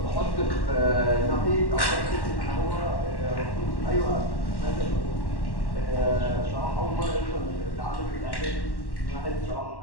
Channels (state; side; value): late; right; 1.1 ms